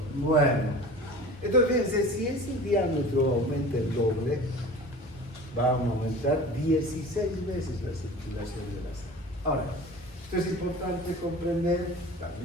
Bueno, entonces fíjense, si ese diámetro aumenta el doble, va a aumentar 16 veces la circulación de la sangre. Ahora, esto es importante comprender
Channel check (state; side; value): normal; both; correlation 0.39